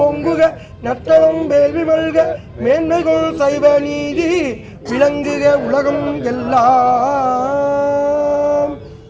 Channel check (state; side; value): identical; both; correlation 1.00